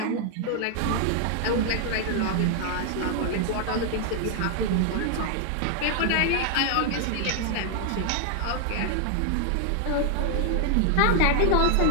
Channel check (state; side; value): different; both; correlation 0.00